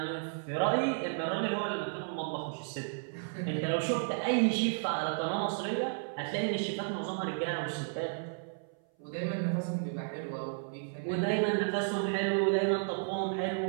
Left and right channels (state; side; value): silent; left; 56 dB below the other